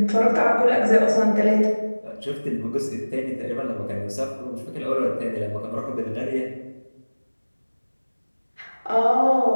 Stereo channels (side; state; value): both; inverted; correlation -1.00